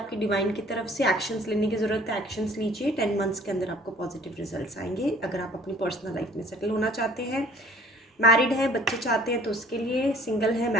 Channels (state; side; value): normal; both; correlation 0.53